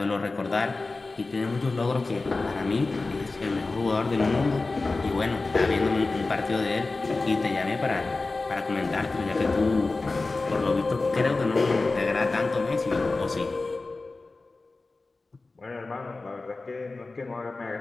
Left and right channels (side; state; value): right; quieter; 3.5 dB